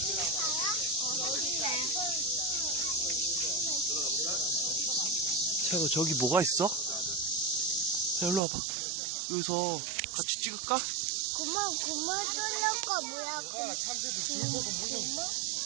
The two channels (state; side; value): drops out; left; at 8.4 s